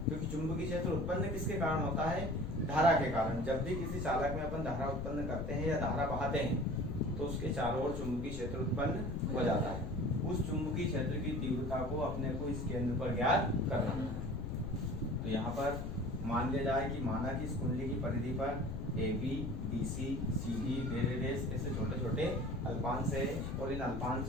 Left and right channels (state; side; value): noise; left; rumble, 4 dB below the sound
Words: क्योंकि चुंबकीय क्षेत्र उत्पन्न किसके कारण होता है, धारा के कारण। जब भी किसी चालक में अपन धारा उत्पन्न करते हैं या धारा बहाते हैं तो उसके चारों ओर चुंबकीय क्षेत्र उत्पन्न हो जाता है। उस चुंबकीय क्षेत्र की तीव्रता को अपने को इस केंद्र पर ज्ञात करना है। तो यहाँ पर मान लिया जाए कि माना कि इस कुंडली की परिधि पर AB, BC, CD ऐसे छोटे छोटे अल्पांश है, और इन